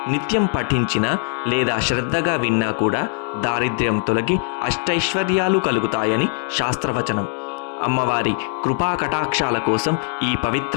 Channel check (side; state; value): right; silent; digital silence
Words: నిత్యం పఠించినా లేదా శ్రద్ధగా విన్నా కూడా దారిద్ర్యం తొలగి అష్టైశ్వర్యాలు కలుగుతాయని శాస్త్రవచనం. అమ్మవారి కృపా కటాక్షాల కోసం ఈ